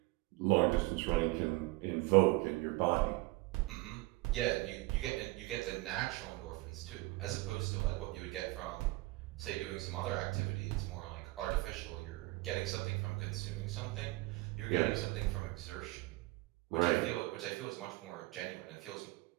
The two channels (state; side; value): quieter; left; 21.7 dB